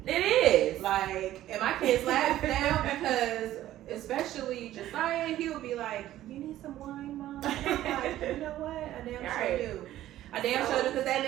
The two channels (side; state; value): left; quieter; 13.7 dB